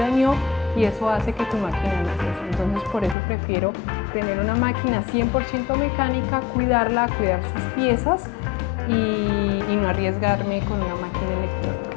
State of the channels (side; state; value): right; drops out; at 3.2 s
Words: y eso hace que tu máquina no cose. Entonces por eso prefiero tener una máquina 100% mecánica, cuidarla, cuidar sus piezas y no arriesgarme con una máquina electrónica.